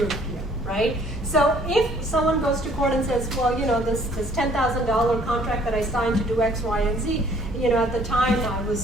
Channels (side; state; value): both; normal; correlation 0.59